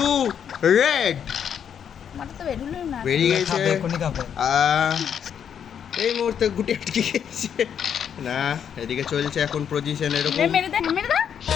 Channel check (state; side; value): quieter; right; 8.3 dB